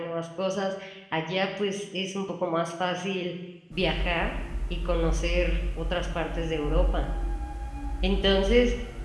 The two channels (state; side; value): identical; both; correlation 1.00